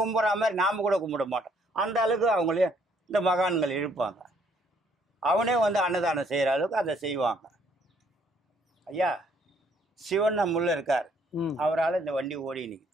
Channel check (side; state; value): both; normal; correlation 0.66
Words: மாதிரி நாம கூட கும்பிட மாட்டோம். அந்த அளவுக்கு அவங்களே இந்த மகான்கள் இருப்பாங்க. அவனே வந்து அன்னதானம் செய்யற அளவுக்கு அதை செய்வாங்க. ஐயா சிவன் நம்முள்ள இருக்கார். அவரால் இந்த வண்டி ஓடி நிற்குது.